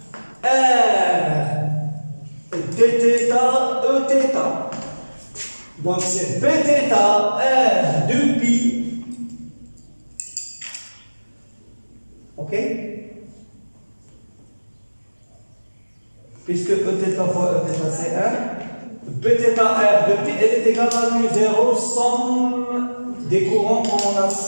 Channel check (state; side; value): inverted; both; correlation -1.00